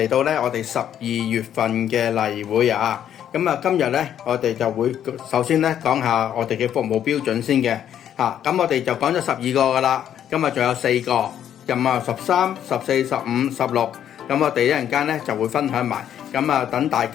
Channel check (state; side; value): quieter; right; 10.0 dB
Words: 到咧我哋12月份嘅例會啊。咁啊，今日咧我哋就會首先咧講下我哋嘅服務標準先嘅嚇。咁我哋就講咗12個噶啦，今日仲有4個，咁啊13、14、15、16。咁我哋一陣間咧就會分享埋。咁啊，等大